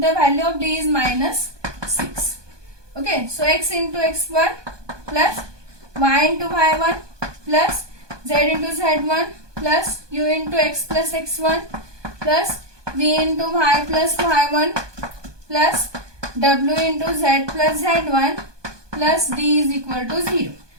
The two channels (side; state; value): left; late; 1.2 ms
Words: the value of d is minus 6. Okay, so x into x1 plus y into y1 plus z into z1 plus u into x plus x1 plus v into y plus y1 plus w into z plus z1 plus d is equal to 0.